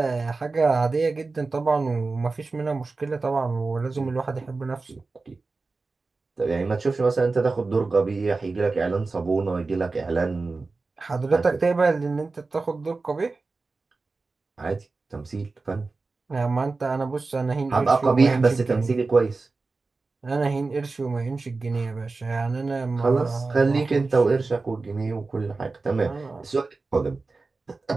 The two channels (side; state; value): left; quieter; 3.8 dB